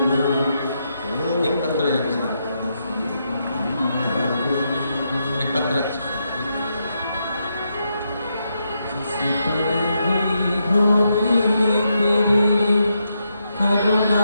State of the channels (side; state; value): both; inverted; correlation -0.82